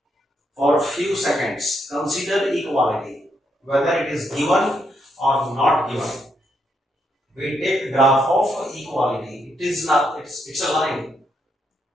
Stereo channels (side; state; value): both; normal; correlation 0.78